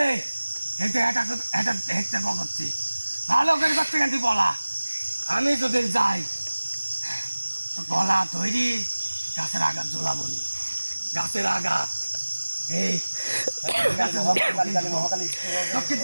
এতে এটা হেঁটে করছি ভালো করে করছে কিন্তু বলা আমি যদি যাই তো গলা তৈরি গাছের আঘাত জ্বলাবো নি গাছের আঘাত এই গাছের কালী কালী মহাকালী তো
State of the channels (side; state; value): both; inverted; correlation -1.00